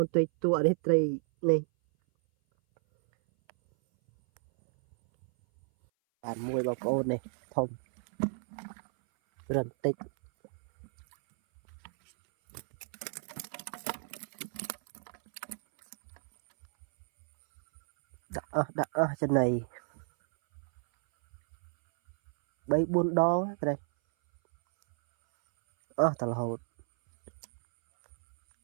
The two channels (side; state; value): left; silent; 56 dB below the other